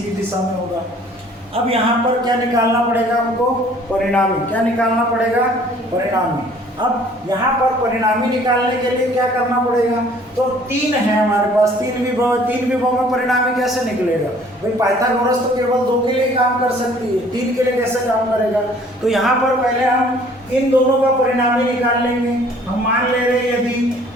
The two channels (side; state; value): both; normal; correlation 0.55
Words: की दिशा में होगा। अब यहाँ पर क्या निकालना पड़ेगा हमको, परिणामी। क्या निकालना पड़ेगा, परिणामी। अब यहाँ पर परिणामी निकालने के लिए क्या करना पड़ेगा, तो 3 है हमारे पास, 3 विभव, 3 विभव में परिणामी कैसे निकलेगा भाई। पाइथागोरस तो केवल 2 के लिए काम कर सकती है, 3 के लिए कैसे काम करेगा। तो यहाँ पर पहले हम इन दोनों का परिणामी निकाल लेंगे। हम मान ले रहे हैं यदि